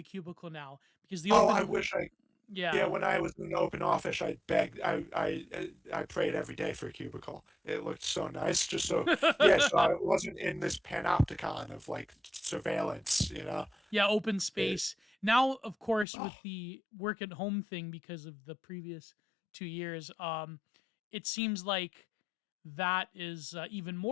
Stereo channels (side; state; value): right; drops out; at 16.1 s